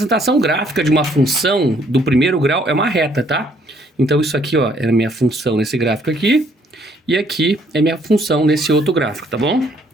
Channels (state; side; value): normal; both; correlation 0.65